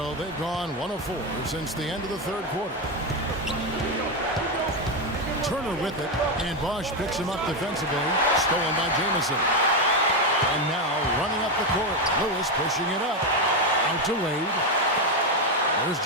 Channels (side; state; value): both; normal; correlation 0.08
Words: they've gone 1 of 4 since the end of the third quarter. Turner with it, and Bosch picks him up defensively. Stolen by Jamison. And now running up the court. Lewis pushing it up. Out to Wade. There's